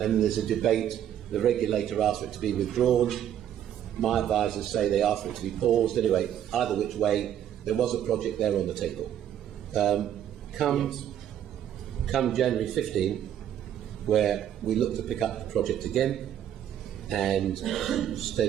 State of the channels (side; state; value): left; quieter; 10.4 dB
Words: there's a debate. The regulator asked for it to be withdrawn. My advisors say they asked for it to be paused. Anyway, either which way, there was a project there on the table. Come January 15, where we looked to pick up the project again, and